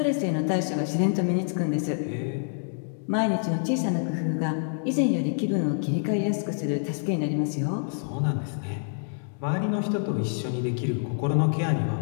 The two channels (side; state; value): right; silent; digital silence